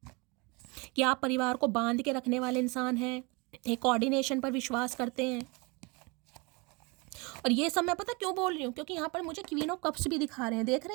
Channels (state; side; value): quieter; left; 28.3 dB